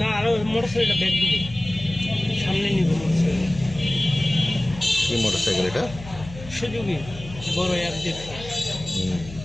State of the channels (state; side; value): noise; left; hum, 15 dB below the sound